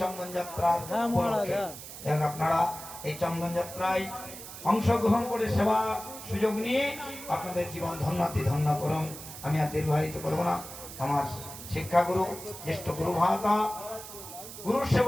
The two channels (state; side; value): noise; right; hiss, 12 dB below the sound